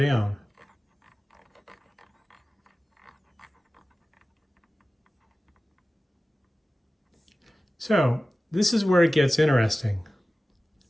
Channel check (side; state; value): both; normal; correlation 0.96